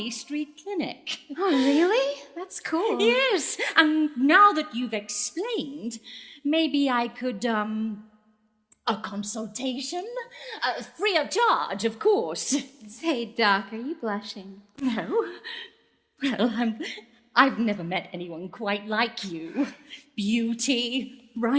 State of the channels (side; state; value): both; identical; correlation 1.00